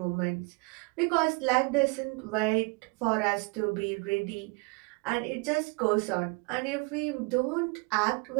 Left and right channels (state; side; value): quieter; left; 29.5 dB